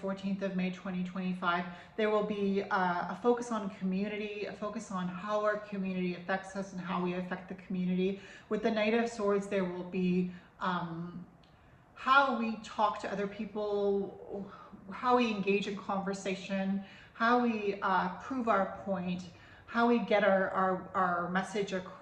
of May, 2025, there will be a focus on community, a focus on how our community affects us and how we affect the community. With the Knight of Swords, there will be how we talk to other people, how we engage in conversation, how we prove our point, how we get our message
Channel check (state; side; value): identical; both; correlation 1.00